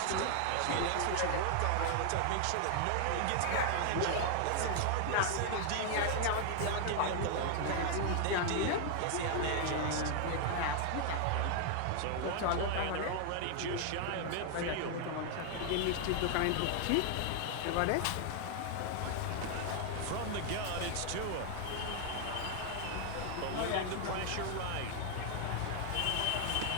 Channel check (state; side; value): different; both; correlation 0.00